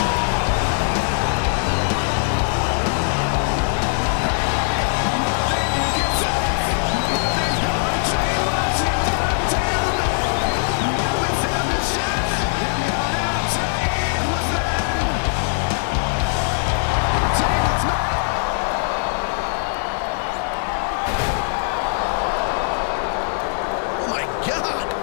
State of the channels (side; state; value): right; silent; digital silence